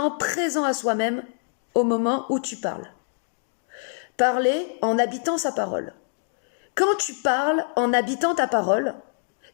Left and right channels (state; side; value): silent; right; digital silence